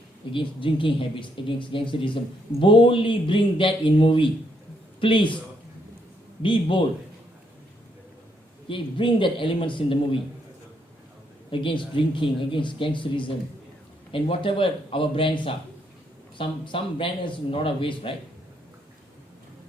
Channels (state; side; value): normal; both; correlation 0.74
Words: against drinking habits, against gangsterism. Boldly bring that in movie. Please, be bold. Okay, bring that elements in the movie. Against drinking, against gangsterism, and whatever our brands are. Some brands in a lot of ways, right?